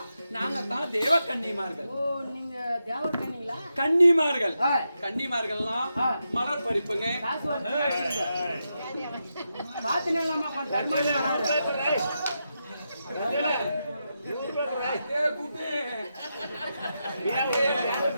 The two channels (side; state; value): both; inverted; correlation -0.86